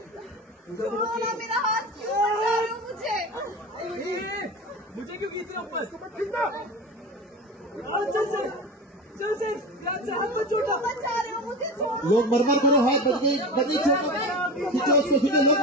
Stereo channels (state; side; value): normal; both; correlation 0.28